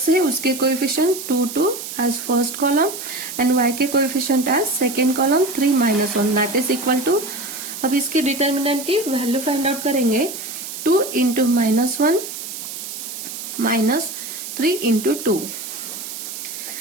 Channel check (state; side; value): noise; right; hiss, 8 dB below the sound